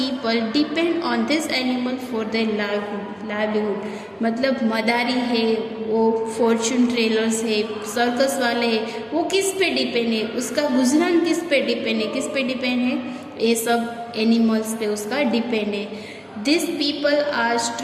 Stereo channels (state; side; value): identical; both; correlation 1.00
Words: depend on this animal for their livelihood. मतलब मदारी है, वो फॉर्चून टेलर्स है, सर्कस वाले हैं, वो किस पे डिपेंड है, उसका गुजरान किस पे डिपेंड है, ये सब एनिमल्स पे उसका डिपेंड है. This people are